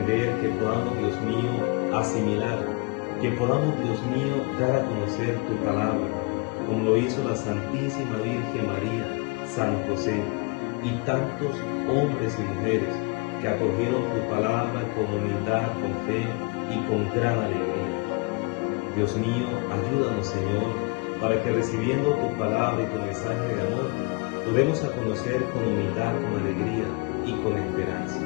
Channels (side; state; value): right; quieter; 29.7 dB